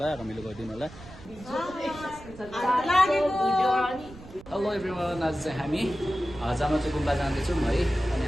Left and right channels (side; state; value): right; noise; rumble, 18 dB below the sound